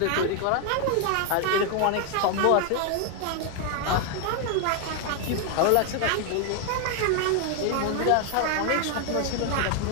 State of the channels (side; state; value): both; different; correlation 0.00